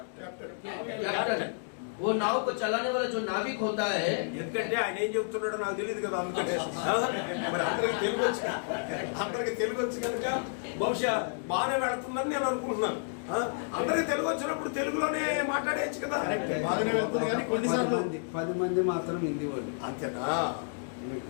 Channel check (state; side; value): silent; right; digital silence